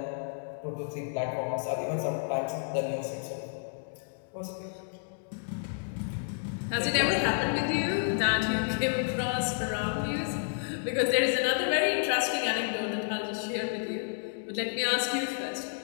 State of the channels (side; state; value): right; silent; digital silence